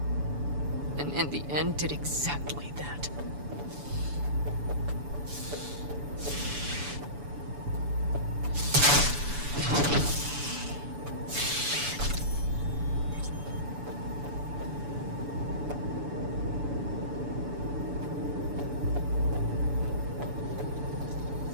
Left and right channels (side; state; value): left; late; 7.0 ms